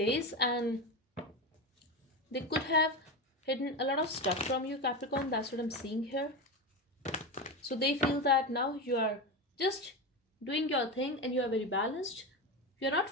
and they could have hidden a lot of stuff from you, Capricorn. That's what I'm seeing here. So they feel that now you are just doing your thing and you are very balanced. You're not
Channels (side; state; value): both; normal; correlation 0.19